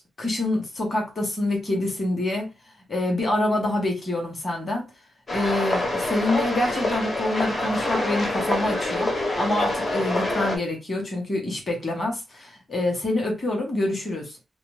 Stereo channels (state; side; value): normal; both; correlation 0.85